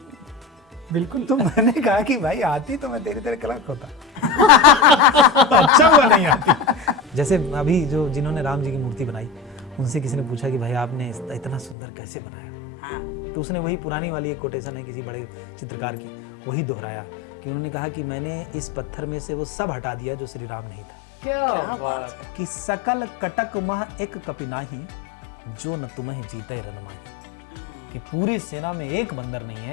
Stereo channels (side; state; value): right; drops out; at 11.8 s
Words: बिल्कुल। तो मैंने कहा कि भाई आती तो मैं तेरी तरह कलंक होता। अच्छा हुआ नहीं आती। जैसे अभी जो जिन्होंने राम जी की मूर्ति बनाई, उनसे किसी ने पूछा कि भाई आपने इतना सुंदर कैसे बनाया? तो उसने वही पुरानी वाली एक कोटेशन है किसी बड़े चित्रकार की, वही दोहराया कि उन्होंने कहा कि मैंने इस पत्थर में से वो सब हटा दिया जो श्री राम नहीं था। क्या बात! कि सकल कटक मह एक कपिनाही, जो न तुम्हें जीते रनमाही। कि पूरी सेना में एक बंदर नहीं